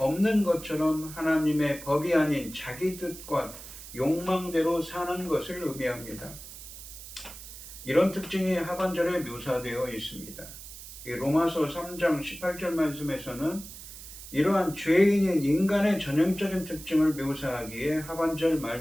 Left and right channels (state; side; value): noise; right; hiss, 14 dB below the sound